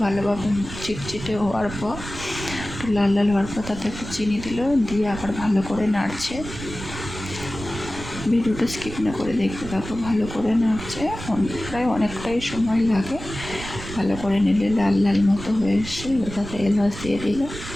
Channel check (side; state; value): right; noise; rumble, 11 dB below the sound